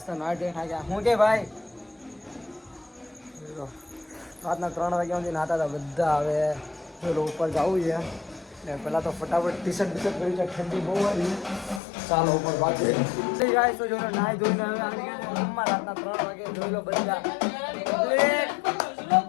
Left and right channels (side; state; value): right; drops out; at 11.8 s